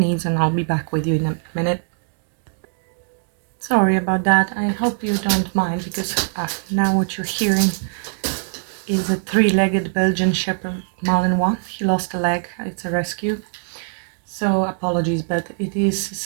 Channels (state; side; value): silent; left; 65 dB below the other